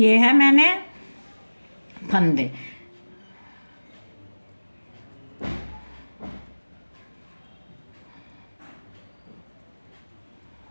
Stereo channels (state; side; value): inverted; both; correlation -1.00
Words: हैं मैंने फंदे।